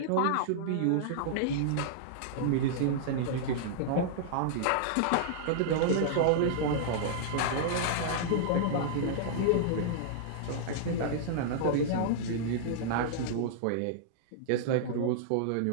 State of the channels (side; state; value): both; different; correlation -0.01